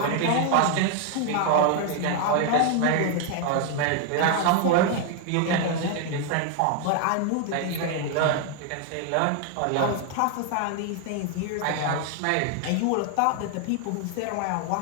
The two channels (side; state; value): both; different; correlation 0.00